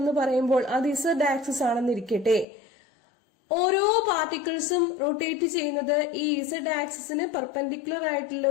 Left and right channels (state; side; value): drops out; right; at 2.5 s